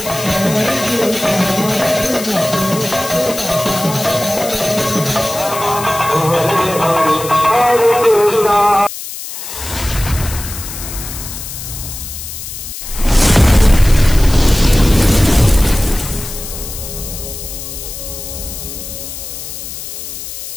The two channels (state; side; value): noise; left; hiss, 9 dB below the sound